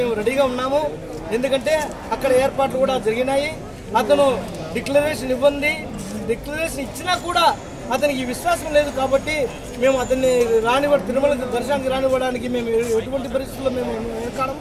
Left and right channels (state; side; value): identical; both; correlation 1.00